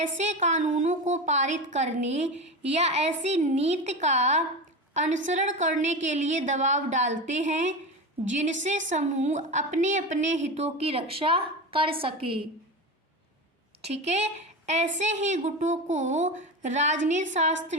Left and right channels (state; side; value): normal; both; correlation 0.23